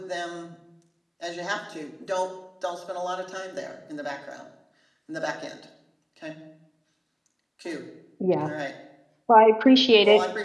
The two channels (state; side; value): identical; both; correlation 1.00